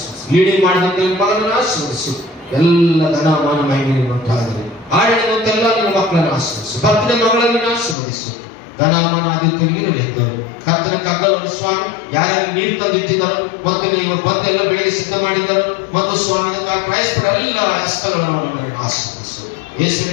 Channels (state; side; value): drops out; right; at 8.0 s